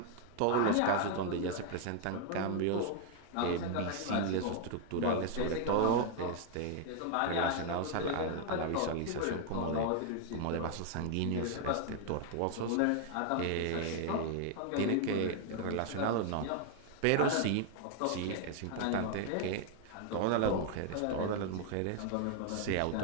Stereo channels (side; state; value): both; different; correlation 0.00